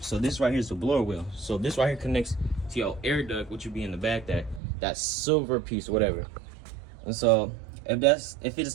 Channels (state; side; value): drops out; left; at 4.6 s